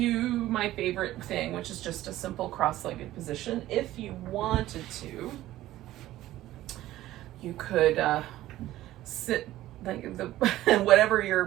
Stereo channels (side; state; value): left; quieter; 15.0 dB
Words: my favorite thing, which is just a simple cross-legged position. If you wanted to, you could sit like whatever